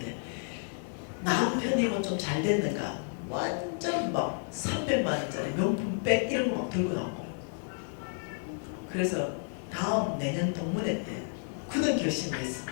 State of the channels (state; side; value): silent; right; 57 dB below the other